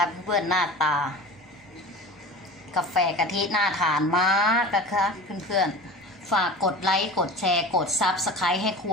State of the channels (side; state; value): both; normal; correlation 0.35